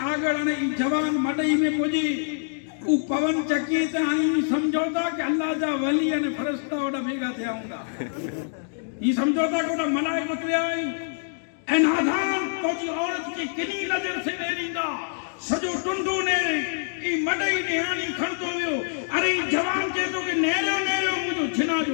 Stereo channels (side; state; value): right; silent; digital silence